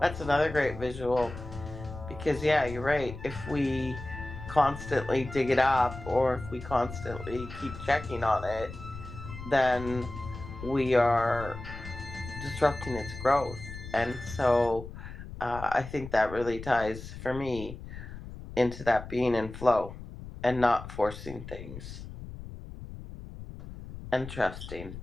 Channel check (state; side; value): noise; left; rumble, 12 dB below the sound